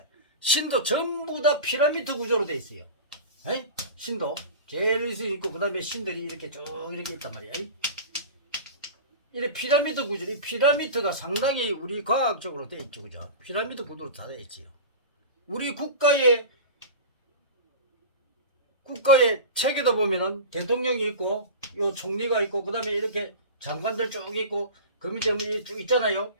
신도 전부 다 피라미드 구조로 돼 있어요. 에이? 신도 제일 위에 있고, 그 다음에 신들이 이렇게 쭉 이렇게 있단 말이야. 이래 피라미드 구조, 이 피라미드가 상당히 우리 과학적으로 돼 있죠, 그죠? 피라미드 구조로 다 돼 있지요. 우리 국가의 체계도 보면은 대통령이 있고 요 총리가 있고 그다음에 이렇게 장관들 쭉 있고 그 밑에 뭐 쭉 있잖아요.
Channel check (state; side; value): inverted; both; correlation -0.31